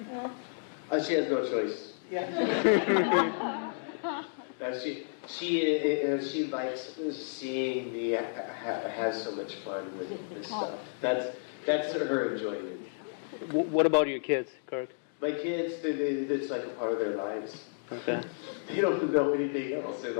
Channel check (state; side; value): silent; right; digital silence